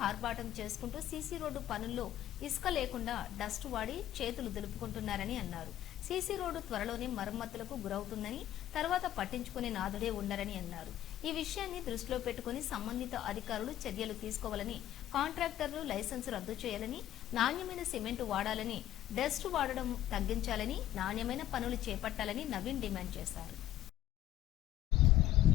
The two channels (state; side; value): quieter; right; 12.8 dB